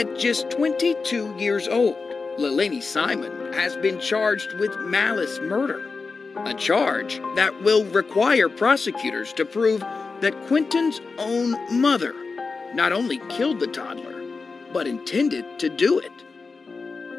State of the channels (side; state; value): right; quieter; 4.4 dB